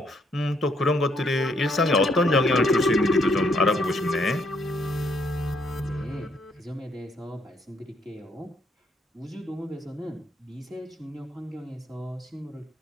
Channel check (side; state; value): both; normal; correlation 0.71